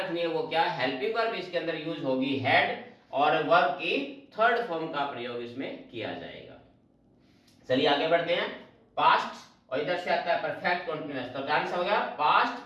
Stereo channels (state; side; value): identical; both; correlation 1.00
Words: है वो क्या, हेल्पिंग वर्ब इसके अंदर यूज होगी हेड, और वर्ब की थर्ड फॉर्म का प्रयोग इसमें किया जाएगा। चलिए आगे बढ़ते हैं। पास्ट और इधर से आता है परफेक्ट कंटीन्यूअस, तो आंसर हो गया पास्ट